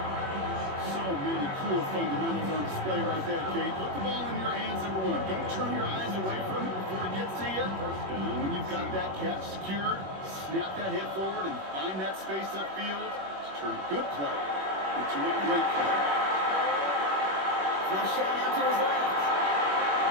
So many cool fundamentals on display right there, Kate. Put the ball in your hands, number one. Don't turn your eyes away from it before it gets to you. And when you've got that catch secured, snap that head forward and find that space upfield to turn a good play into a great play. Flush shot out to his left.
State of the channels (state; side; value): late; left; 21 ms